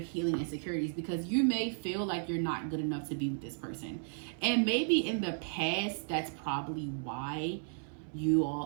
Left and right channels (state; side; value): silent; left; 55 dB below the other